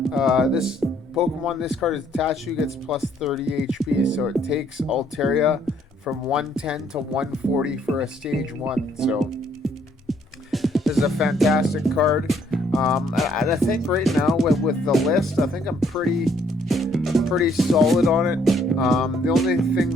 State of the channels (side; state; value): both; normal; correlation 0.66